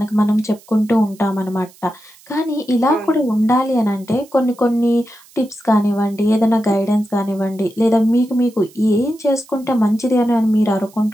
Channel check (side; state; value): right; noise; hiss, 26 dB below the sound